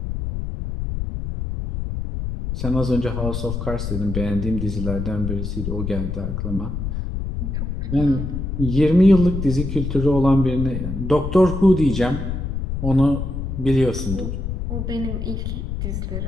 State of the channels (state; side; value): noise; left; rumble, 4 dB below the sound